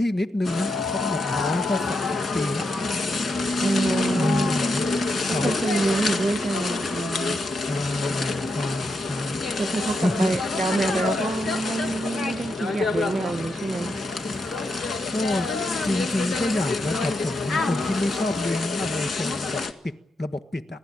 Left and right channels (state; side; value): normal; both; correlation 0.83